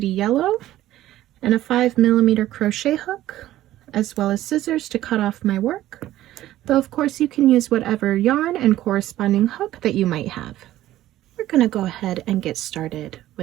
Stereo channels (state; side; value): quieter; left; 14.3 dB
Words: Yellow, and a 5mm crochet hook, as well as scissors to cut off my work, though of course you can use whatever yarn and corresponding hook that you might have. We're going to go ahead and get started